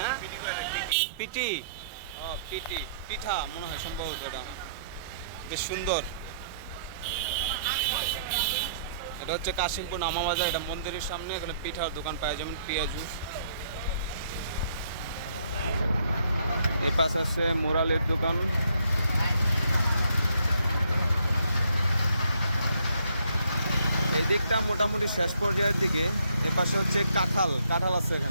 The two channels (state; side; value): inverted; both; correlation -0.69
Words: পিটি। ও পিটি পিঠা মনে হয় সম্ভবত। এটা বেশ সুন্দর। এটা হচ্ছে কাশিমপুর নামাবাজার। এটা মন্দিরের সামনে। এখানে পিঠার দোকান পাওয়া যেমন পেঁয়াজু। এই পাশে আছে মোরালের দোকান। এই দিকটা মোটামুটি শেষ পর্যায়ের দিকে। এ পাশে হচ্ছে কাঁঠাল। কাঁঠাল আছে